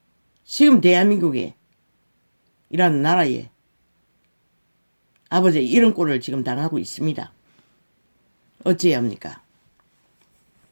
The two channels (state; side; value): inverted; both; correlation -1.00